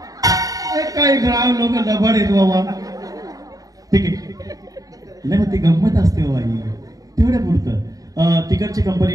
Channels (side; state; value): left; late; 0.17 ms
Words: काही ग्राम लोक लबाड आहेत बाबा. ठीक आहे नाही मग ती गंमत असते बाबा तेवढ्या पुरतं. तिकडची कंपनी